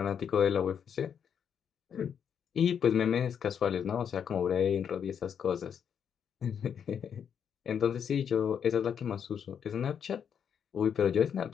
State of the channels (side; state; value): right; quieter; 7.9 dB